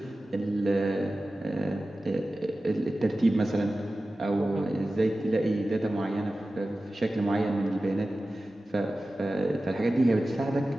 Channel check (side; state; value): both; normal; correlation 0.95